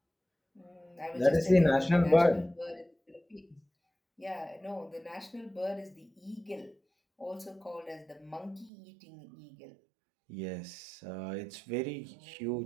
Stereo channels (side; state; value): left; drops out; at 8.7 s